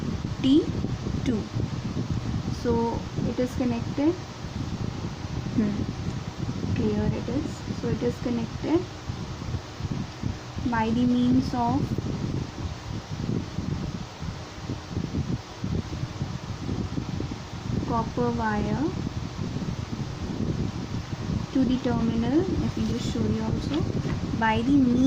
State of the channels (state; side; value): identical; both; correlation 1.00